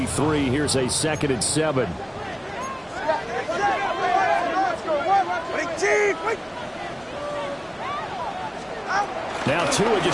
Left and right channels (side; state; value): both; identical; correlation 1.00